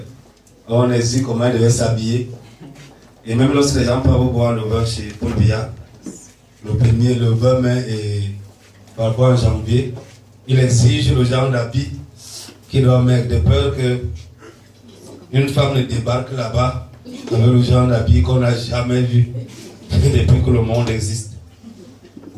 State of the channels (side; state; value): both; identical; correlation 1.00